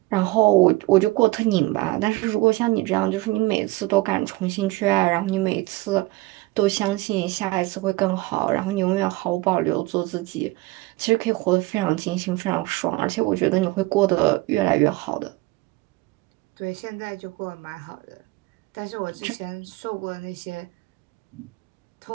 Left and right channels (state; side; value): quieter; left; 20.5 dB